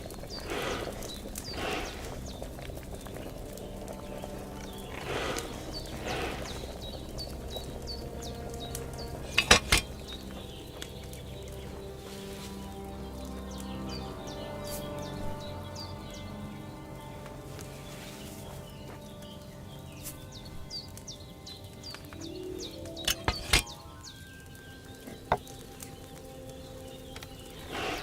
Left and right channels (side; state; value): both; identical; correlation 1.00